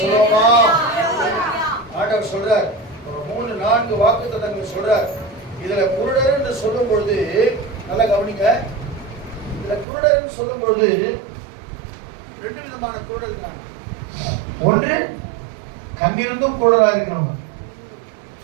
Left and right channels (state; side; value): drops out; left; at 9.9 s